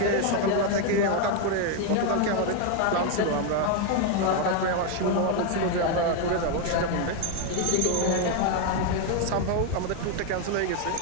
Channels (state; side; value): different; both; correlation 0.01